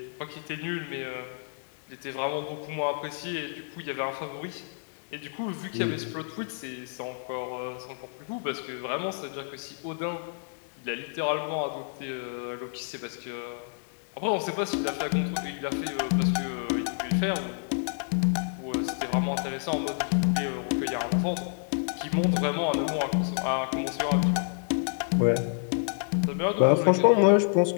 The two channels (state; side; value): silent; right; digital silence